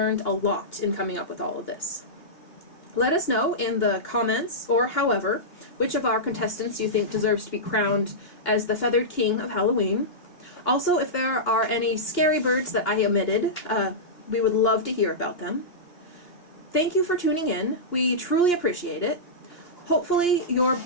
a lot in coming up with all of this. Let us know in the comments, or however, which of our contestants you think deserves to be crowned as the Feathered King of Halloween. Also, if there are any scary birds that I omitted, we would love to hear about them. Thank you for tuning in. We truly appreciate it. Hopefully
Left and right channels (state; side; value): late; right; 2.8 ms